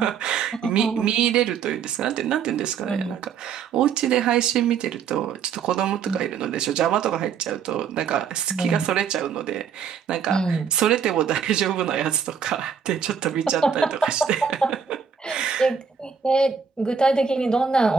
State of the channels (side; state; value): left; quieter; 6.9 dB